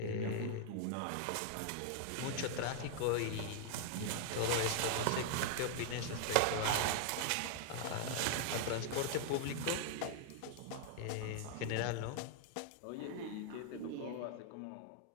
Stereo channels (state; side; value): different; both; correlation 0.00